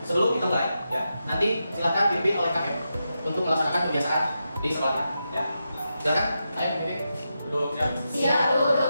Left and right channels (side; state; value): both; inverted; correlation -0.87